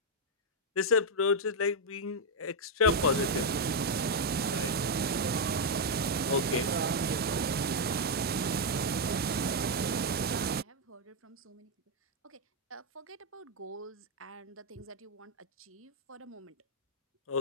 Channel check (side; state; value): both; normal; correlation -0.01